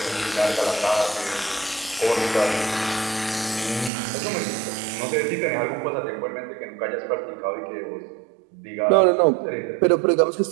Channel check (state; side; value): drops out; left; at 3.9 s